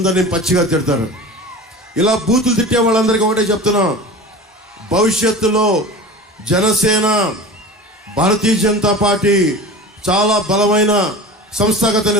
పచ్చిగా తిడతారు. ఇలా బూతులు తిట్టే వాళ్ళందరికీ ఒకటే చెప్తున్నాం, భవిష్యత్తులో జనసేన, భారతీయ జనతా పార్టీ చాలా బలమైన సంస్థాగత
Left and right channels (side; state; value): both; normal; correlation 0.34